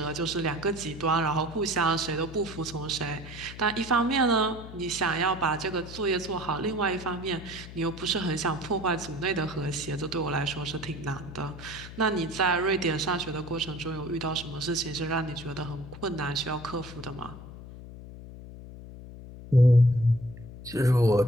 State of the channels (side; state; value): left; noise; hum, 14 dB below the sound